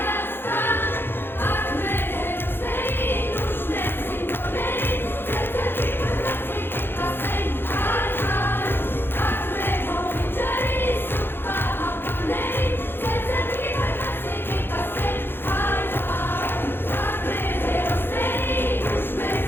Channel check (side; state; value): right; late; 0.10 ms